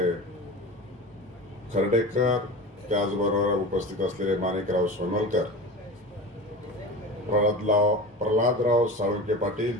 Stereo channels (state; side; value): normal; both; correlation 0.31